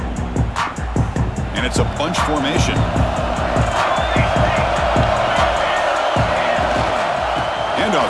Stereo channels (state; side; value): identical; both; correlation 1.00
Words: It's a bunch formation.